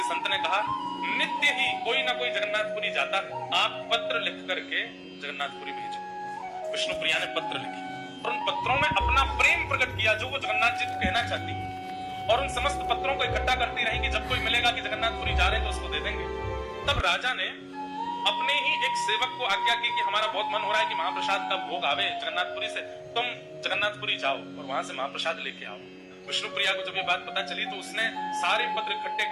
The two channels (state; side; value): identical; both; correlation 1.00